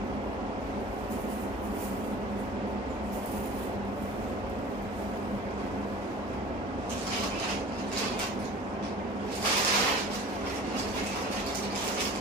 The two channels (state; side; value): normal; both; correlation 0.42